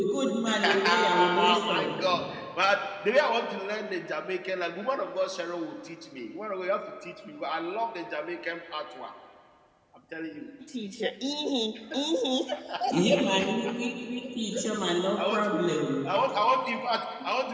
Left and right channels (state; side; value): identical; both; correlation 1.00